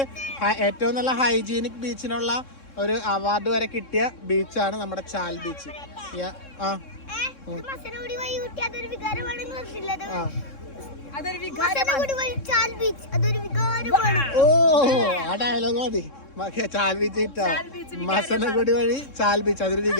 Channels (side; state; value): right; late; 3.6 ms